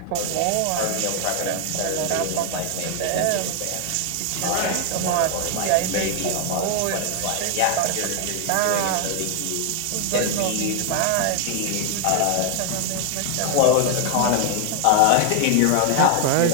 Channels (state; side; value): different; both; correlation 0.00